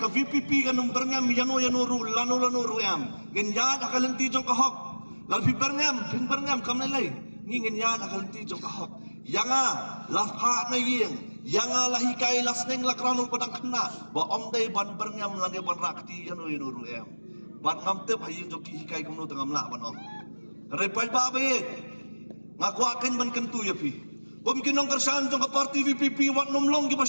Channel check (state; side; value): inverted; both; correlation -1.00